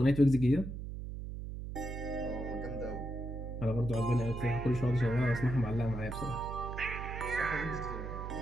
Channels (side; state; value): right; noise; hum, 7 dB below the sound